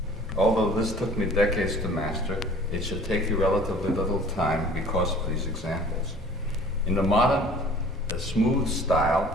Although this took me decades to master, it should take you relatively little time because of these examples. In the modern, smooth style,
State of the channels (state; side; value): normal; both; correlation 0.49